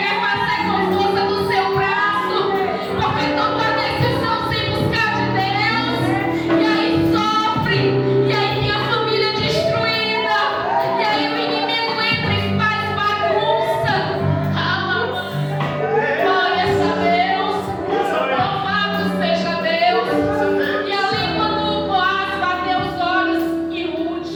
fazer com força do seu braço, porque toma a decisão sem buscar de Deus, e aí sofre, e aí tem a família destruída, e aí o inimigo entra e faz bagunça. Glórias a Deus, louvado seja Deus. E ali quando Boaz bateu os olhos em Ruth,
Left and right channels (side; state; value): both; identical; correlation 1.00